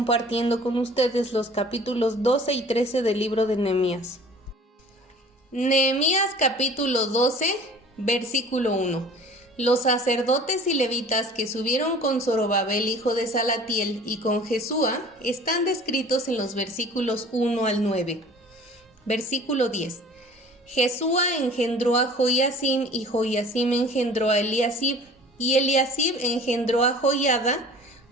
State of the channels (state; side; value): normal; both; correlation 0.46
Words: con ustedes los capítulos 12 y 13 del libro de Nehemías. Nehemías capítulo 12, versículo 1. Los sacerdotes y levitas que subieron con Zorobabel hijo de Salatiel y con Jesúa están descritos en los versículos 1 al 9. Versículo 10. Jesúa engendró a Joiacim y Joiacim engendró a Eliasib y Eliasib engendró a Joiada,